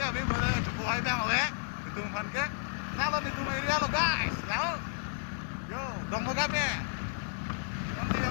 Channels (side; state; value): right; silent; 56 dB below the other